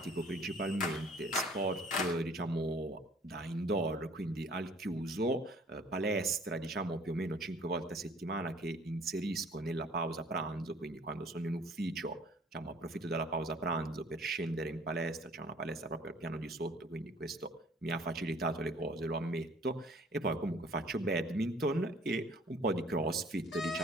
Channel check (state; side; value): normal; both; correlation 0.54